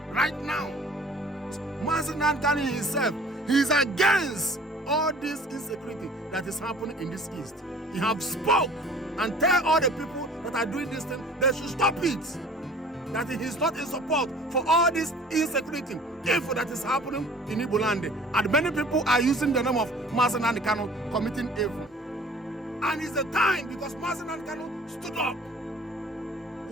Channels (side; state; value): both; normal; correlation 0.49